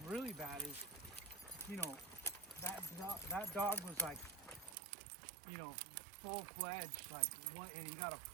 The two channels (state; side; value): drops out; left; at 4.8 s